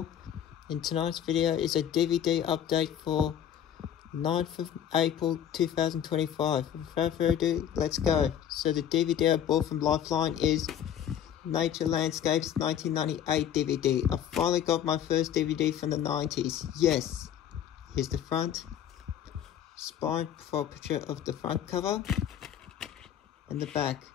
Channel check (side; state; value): right; quieter; 9.7 dB